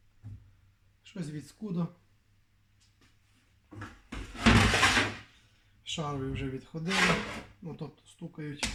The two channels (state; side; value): identical; both; correlation 1.00